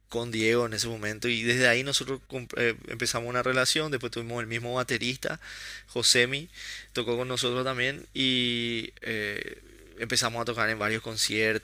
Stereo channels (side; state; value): both; identical; correlation 1.00